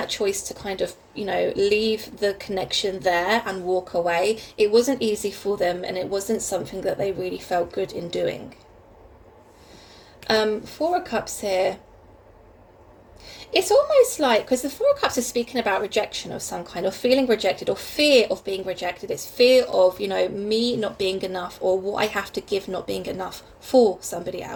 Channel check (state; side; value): identical; both; correlation 1.00